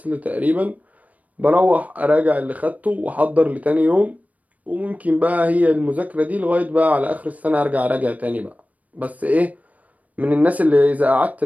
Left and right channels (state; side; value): late; left; 0.072 ms